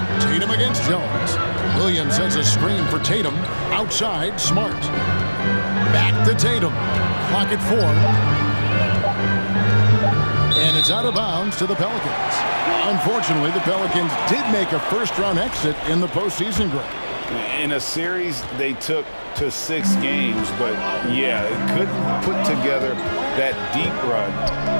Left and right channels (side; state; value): both; inverted; correlation -1.00